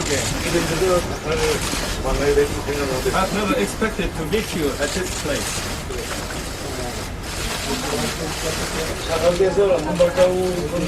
I've never expected to meet you at this place. 사각에서 한 발자국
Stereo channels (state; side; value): identical; both; correlation 1.00